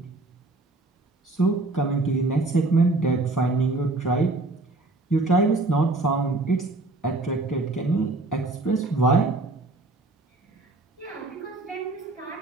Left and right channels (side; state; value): left; quieter; 3.1 dB